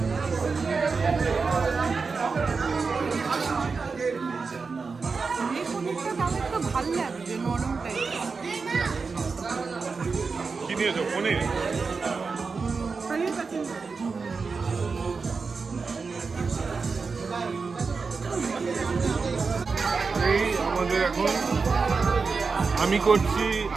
ভালো লাগছে, নরম টাইপ। কি নিয়েছো? পনির? এই আমাদের এখন আমি করছি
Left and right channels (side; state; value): left; quieter; 4.7 dB